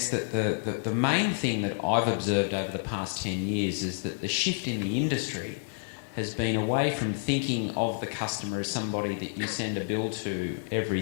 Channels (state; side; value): silent; right; digital silence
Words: that the main thing that I've observed over the past 10 years is that the shift in the industry has been away from thinking of the customer as somebody that you send a bill to every